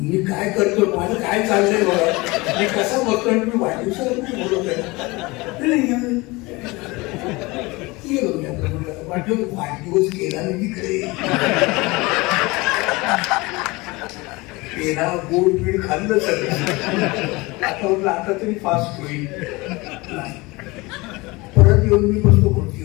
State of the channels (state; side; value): quieter; right; 23.4 dB